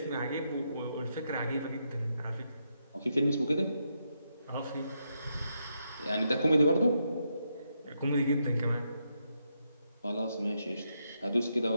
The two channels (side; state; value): both; inverted; correlation -0.81